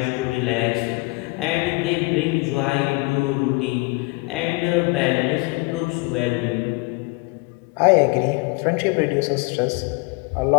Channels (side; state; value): right; quieter; 26.3 dB